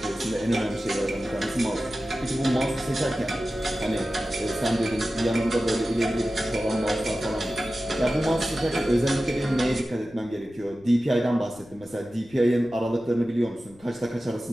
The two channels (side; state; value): left; noise; rumble, 25 dB below the sound